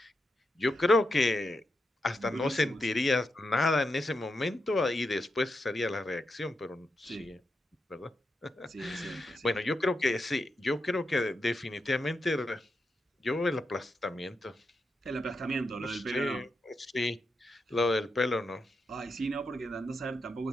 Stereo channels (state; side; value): normal; both; correlation 0.86